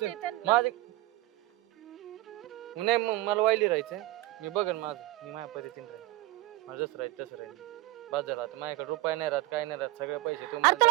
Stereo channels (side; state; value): left; quieter; 17.7 dB